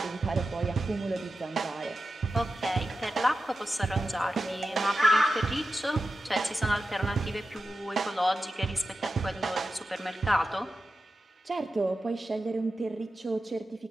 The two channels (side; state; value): both; normal; correlation 0.92